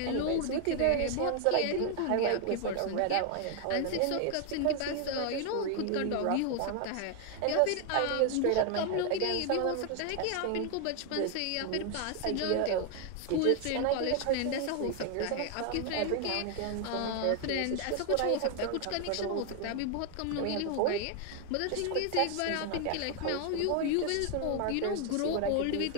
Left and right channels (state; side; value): different; both; correlation 0.00